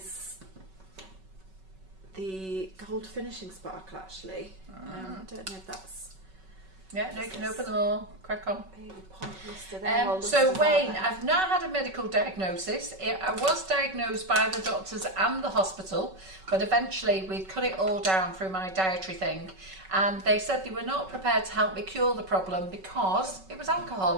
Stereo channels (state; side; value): late; left; 5.3 ms